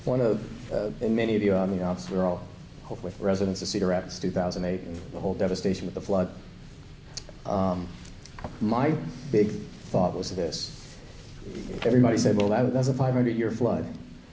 One of, and many of you, I mean, obviously we're all hopefully residents of Cedar Rapids 2008 and the whole devastation with the flood. My big thought was this. Everybody said, well, that's a 500-year flood.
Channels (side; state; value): both; identical; correlation 1.00